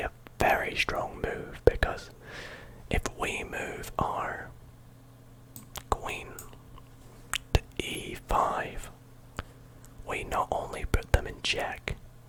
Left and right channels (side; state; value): both; identical; correlation 1.00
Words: very strong move, because if we move our queen to e5, we not only put them in check,